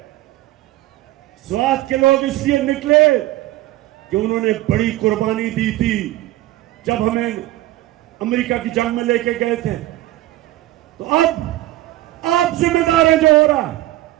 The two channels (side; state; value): left; quieter; 16.5 dB